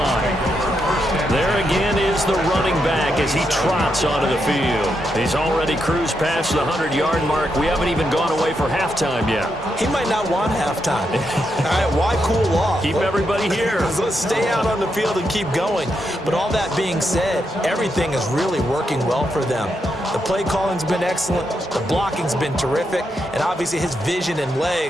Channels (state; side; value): normal; both; correlation 0.82